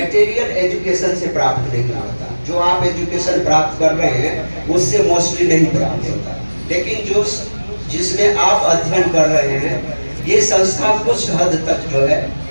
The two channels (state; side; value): inverted; both; correlation -1.00